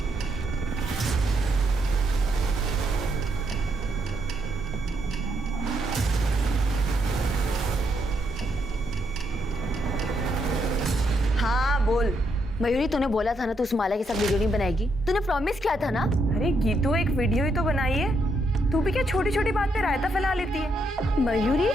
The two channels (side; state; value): both; normal; correlation 0.78